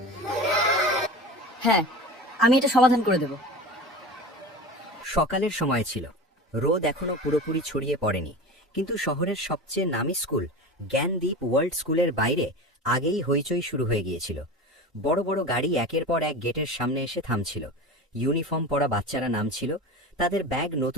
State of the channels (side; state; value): both; normal; correlation 0.31